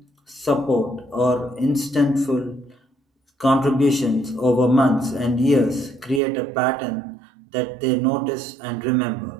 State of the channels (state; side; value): drops out; left; at 6.2 s